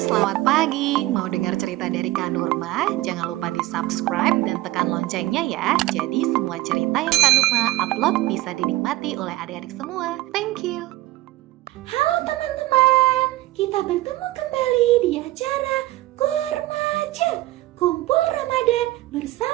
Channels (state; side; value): quieter; left; 17.4 dB